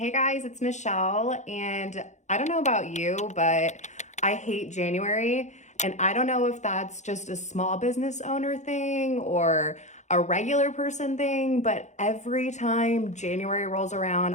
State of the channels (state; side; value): late; right; 0.34 ms